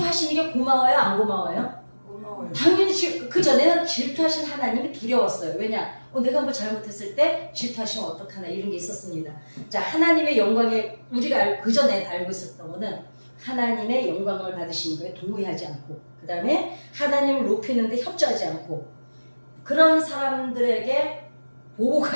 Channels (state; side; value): inverted; both; correlation -1.00